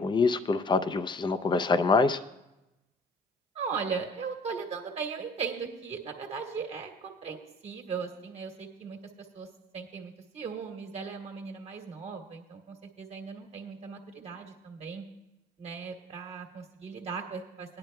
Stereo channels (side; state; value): both; normal; correlation 0.50